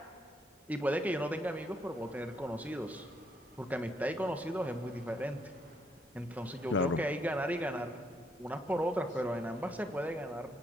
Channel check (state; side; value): normal; both; correlation 0.73